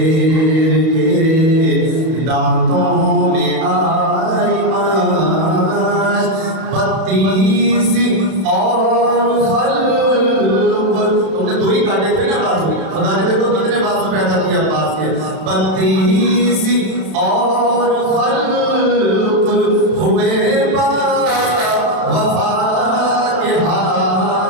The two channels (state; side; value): late; left; 31 ms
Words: کے دانتوں میں آئی ماش، 32 اور خلق، تم نے 2 ہی کاٹے تھے نا بازو، خدا نے دیکھو کتنے بازو پیدا کیا عباس کے، 32 اور خلق ہوئے با وفا کے